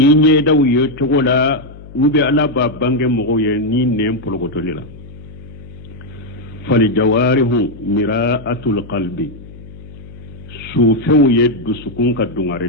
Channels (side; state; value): left; noise; hum, 17 dB below the sound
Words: ɲɛdaw ye cogo la u bɛ ala b'a bange mɔgɔw ye ni nɛn polokotori la falijawarihu mira'atul qalbi sufɛnw ye dusukun ka